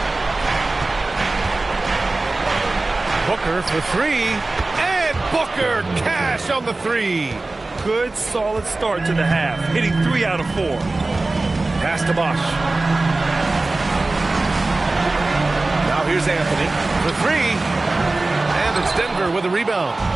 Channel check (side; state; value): left; quieter; 3.2 dB